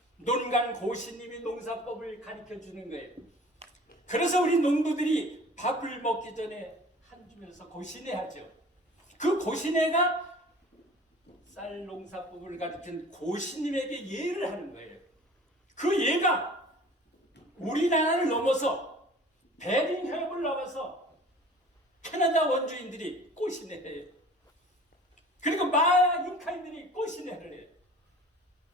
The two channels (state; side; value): normal; both; correlation 0.45